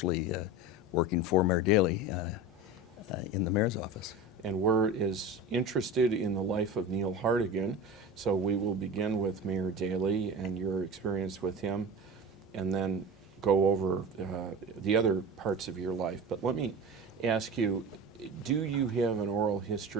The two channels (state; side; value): normal; both; correlation 0.31